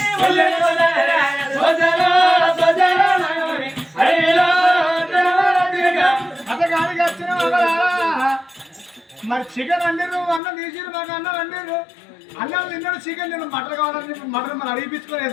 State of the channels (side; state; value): right; drops out; at 10.4 s